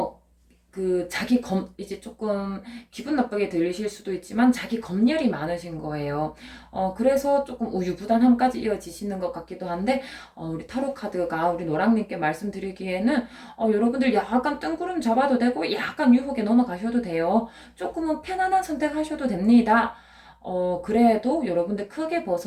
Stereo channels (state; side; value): identical; both; correlation 1.00